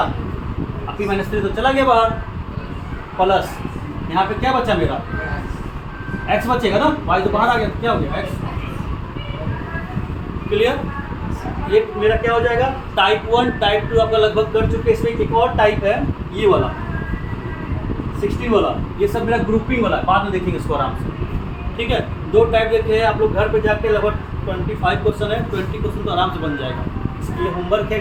अब p माइनस 3 तो चला गया बाहर, प्लस यहाँ पे क्या बचा मेरा x बचेगा ना, y तो बाहर आ गया, तो क्या हो गया x। क्लियर, ये मेरा क्या हो जाएगा टाइप 1, टाइप 2 आपका लगभग कर चुके। इसमें एक और टाइप है ये वाला 16 वाला, ये सब मेरा ग्रुपिंग वाला है, बाद में देखेंगे इसको आराम से, ठीक है। 2 टाइप देखे हैं आप लोग, घर पे जाके लगभग 25 क्वेश्चन है, 20 क्वेश्चन तो आराम से बन जाएगा। इसके लिए होमवर्क है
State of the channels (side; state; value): both; identical; correlation 1.00